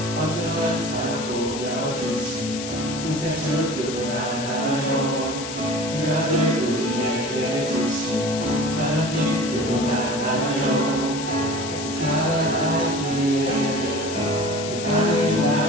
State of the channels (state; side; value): noise; left; hiss, 9 dB below the sound